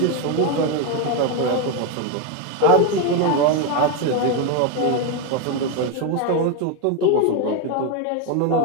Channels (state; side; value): different; both; correlation 0.02